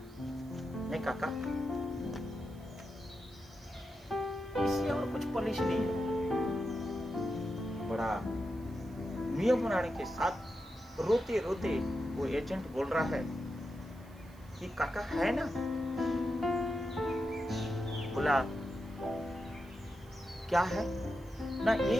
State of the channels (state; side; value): noise; right; hiss, 27 dB below the sound